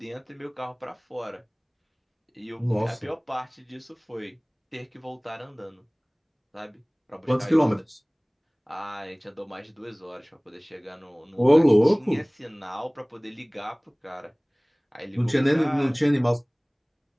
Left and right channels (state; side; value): identical; both; correlation 1.00